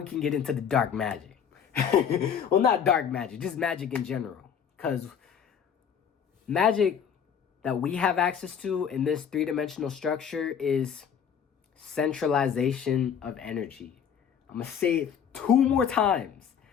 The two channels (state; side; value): quieter; right; 7.8 dB